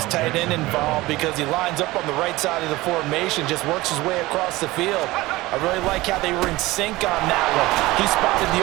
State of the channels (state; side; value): quieter; left; 19.3 dB